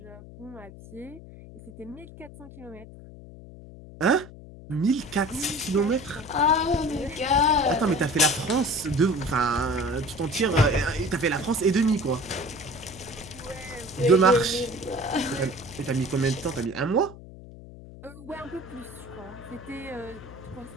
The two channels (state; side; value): noise; left; hum, 17 dB below the sound